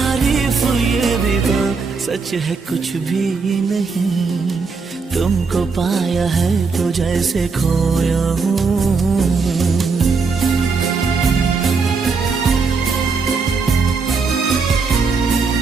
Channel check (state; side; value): quieter; left; 4.7 dB